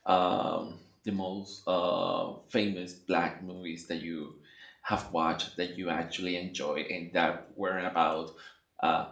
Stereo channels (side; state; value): both; identical; correlation 1.00